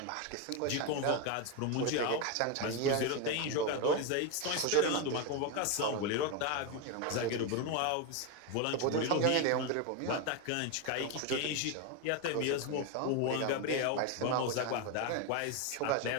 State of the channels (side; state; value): both; different; correlation 0.02